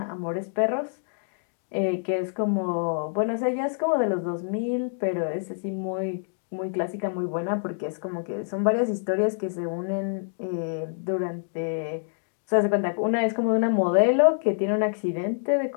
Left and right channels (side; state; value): right; silent; digital silence